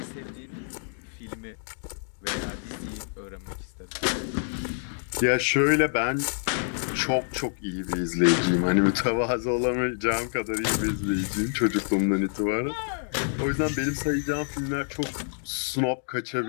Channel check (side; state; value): right; silent; digital silence